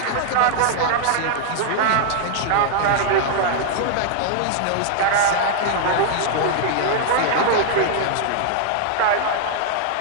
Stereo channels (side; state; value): both; different; correlation -0.01